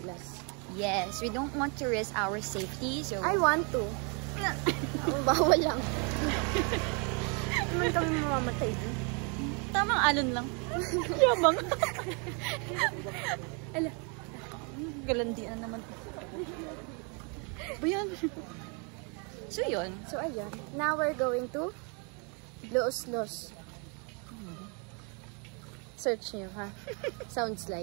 Yes, we don't want to risk our safety. So I want to. Bawal lang. Naman kami mamamatay din. Tamang alon lang. Yabang. Ala. Galandian naman. Bayan. So yun. So ayun. Now we're going to Los. Search nyo, ha? Sounds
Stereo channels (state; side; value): quieter; left; 35.2 dB